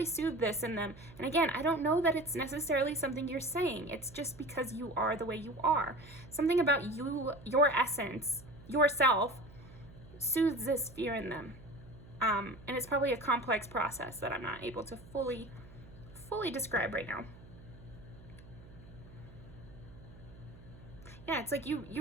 soothe this in them. And again, I don't know that it's necessarily something you're saying. It's just because you are the way you are. Something about you, your essence, yourself, soothes this fear in them. And it's probably a complex process that I'm not able to fully describe right now. Yeah, it's like you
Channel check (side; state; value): right; noise; hum, 19 dB below the sound